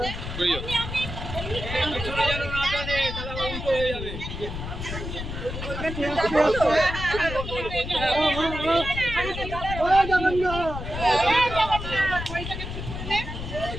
করিও চলে যাও না জানে তাহলে উল্টো হয়ে যাবে।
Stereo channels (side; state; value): left; noise; rumble, 7 dB below the sound